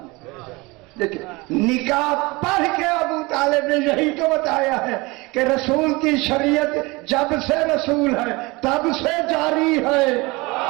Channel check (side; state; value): left; quieter; 24.2 dB